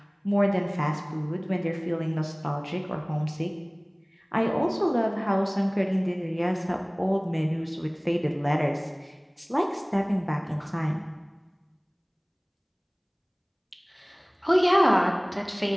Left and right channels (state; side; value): identical; both; correlation 1.00